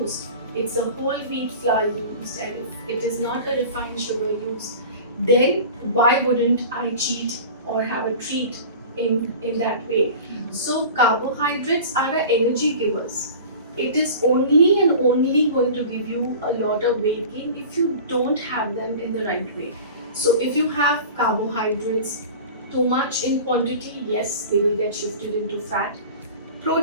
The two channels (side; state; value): both; inverted; correlation -0.38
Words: it's a whole wheat flour used, and if it is not a refined sugar used, then why wouldn't I cheat or have a treat in that way? So carbohydrates are our energy givers. It is only and only going to give you a lot of weight gain if you don't have them in the right way. So if you have carbohydrates too much in quantity, yes, they will get shifted into fat.